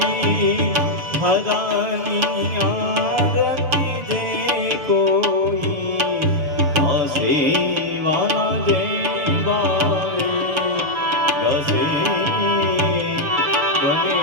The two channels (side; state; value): left; late; 6.8 ms